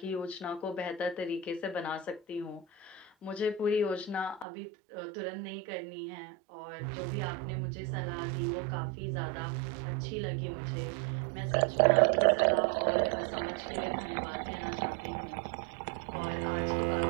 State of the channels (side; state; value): left; drops out; at 4.5 s